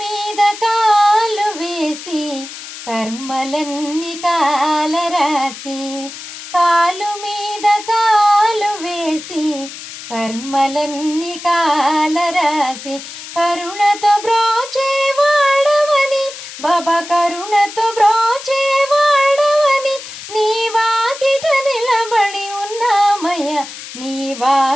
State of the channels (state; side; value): noise; left; hiss, 12 dB below the sound